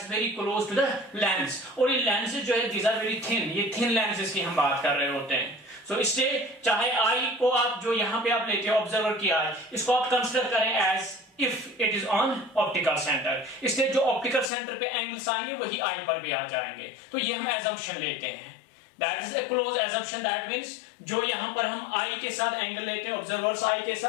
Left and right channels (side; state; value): right; drops out; at 14.5 s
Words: very close to the lens, और ये लेंसेज जो है दीज आर वेरी थिन, ये थिन लेंसेज की हम बात कर रहे होते हैं. सो इससे चाहे आई को आप जो यहां पे आप लेते हैं ऑब्जर्वर की आई, इसको आप कंसिडर करें as if it is on optical centre. इसलिए जो ऑप्टिकल सेंटर पे एंगल्स आएंगे वही आई पर भी आ जाएंगे. तो ये हम एजम्पशन लेते हैं, that is a close assumption. That means जो यहां पर हम आई के साथ एंगल लेते हैं ऑब्जर्वर्स आई के